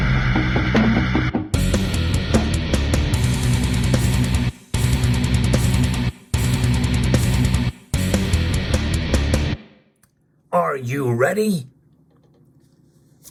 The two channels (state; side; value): identical; both; correlation 1.00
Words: Are you ready?